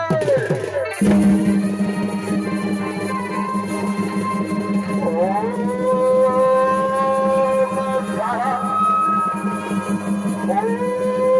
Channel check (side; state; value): both; identical; correlation 1.00